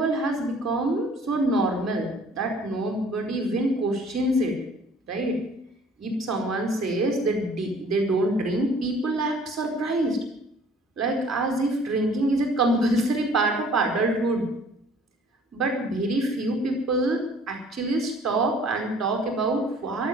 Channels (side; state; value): both; normal; correlation 0.54